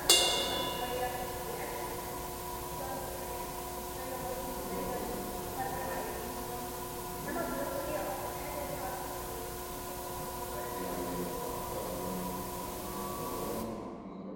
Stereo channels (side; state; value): both; identical; correlation 1.00